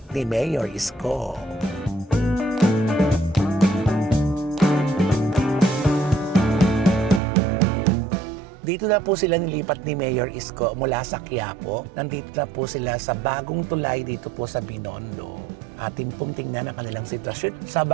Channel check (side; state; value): left; drops out; at 7.2 s